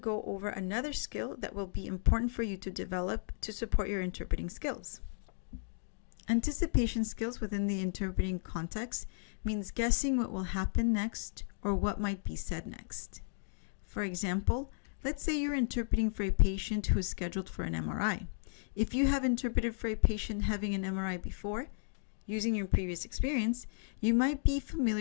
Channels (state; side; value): silent; right; digital silence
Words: over another skill that will be important for you to develop to support your interpreting skills. Anticipation skills within the interpreting context means guessing what will happen next or what might be said next. For example, let's say you're interpreting for a patient who is scheduled for an MRI. If you have interpreted for a patient having an MRI before, using your previous experience, you might be